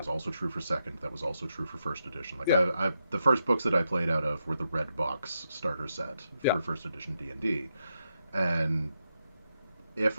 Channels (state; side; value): inverted; both; correlation -0.84